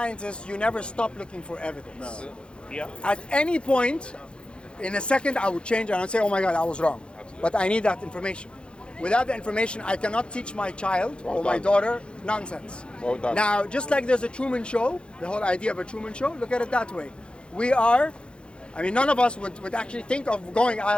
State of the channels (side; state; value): right; late; 0.055 ms